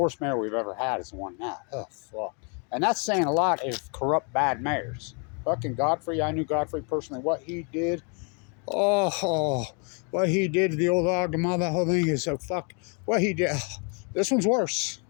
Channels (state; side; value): quieter; right; 36.9 dB